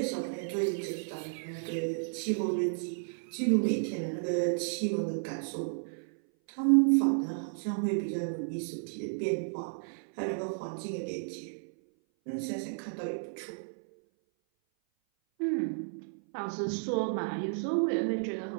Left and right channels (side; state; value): left; silent; 56 dB below the other